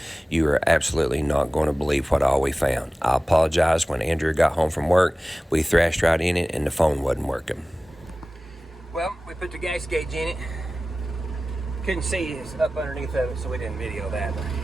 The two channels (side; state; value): both; normal; correlation 0.97